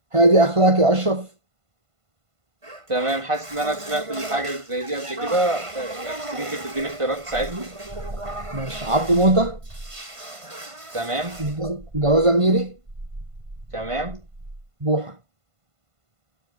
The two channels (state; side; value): late; left; 1.5 ms